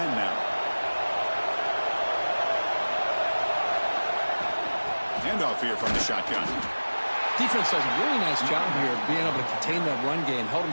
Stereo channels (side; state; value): both; inverted; correlation -1.00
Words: now. Handoff here from the shotgun. Defense does a really nice job here of being able to contain that run game, held